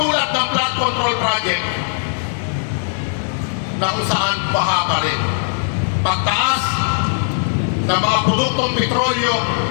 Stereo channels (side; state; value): right; silent; 55 dB below the other